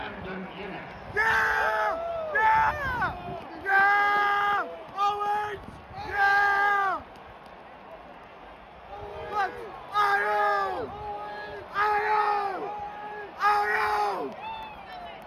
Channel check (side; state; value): both; identical; correlation 1.00